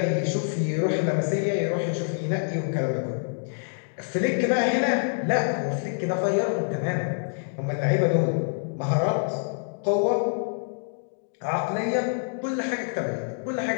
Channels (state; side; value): silent; right; digital silence